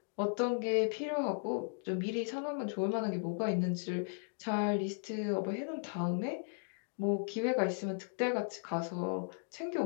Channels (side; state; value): right; silent; digital silence